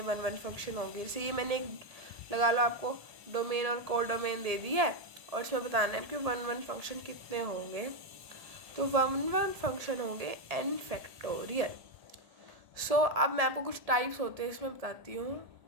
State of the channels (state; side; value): late; left; 1.7 ms